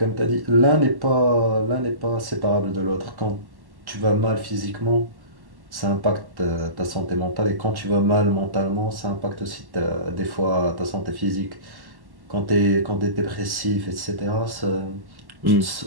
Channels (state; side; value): late; left; 1.1 ms